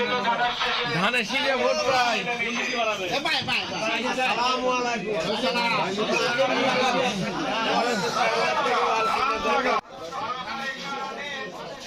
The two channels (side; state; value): both; identical; correlation 1.00